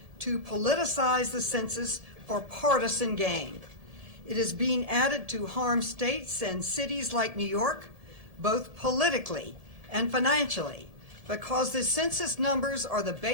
to politicize the census for partisan gain. It is being added to harm states and cities like New York, both politically and financially, because the census numbers are the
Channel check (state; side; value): late; left; 1.7 ms